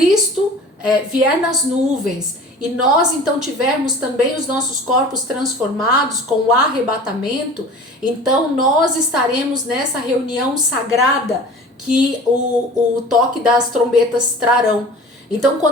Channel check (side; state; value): both; normal; correlation 0.41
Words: vier nas nuvens e nós então tivermos também os nossos corpos transformados com o arrebatamento, então nós estaremos nessa reunião sagrada que o toque das trombetas trarão. Então,